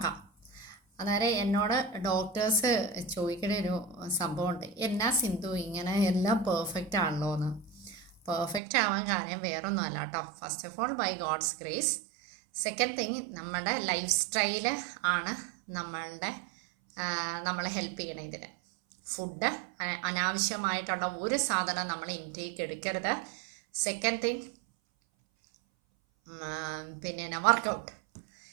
അന്നേരം എന്നോട് ഡോക്ടേഴ്സ് ചോദിക്കുന്ന ഒരു സംഭവമുണ്ട്, എന്നാ സിന്ധു ഇങ്ങനെ എല്ലാം പെർഫെക്റ്റ് ആണല്ലോ എന്ന്. പെർഫെക്റ്റ് ആവാൻ കാര്യം വേറൊന്നും അല്ല കേട്ടോ. First of all by God's grace. Second thing, നമ്മുടെ ലൈഫ് സ്റ്റൈല് ആണ് നമ്മളെ ഹെൽപ്പ് ചെയ്യണം ഇതിന്. ഫുഡ്, അനാവശ്യമായിട്ടുള്ള ഒരു സാധനം നമ്മൾ ഇൻടേക്ക് എടുക്കരുത്. സെക്കൻഡ് തിങ്, പിന്നെ വർക്കൗട്ട്.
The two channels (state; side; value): drops out; left; at 8.6 s